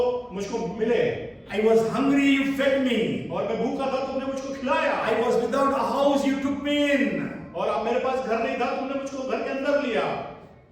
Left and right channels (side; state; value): both; identical; correlation 1.00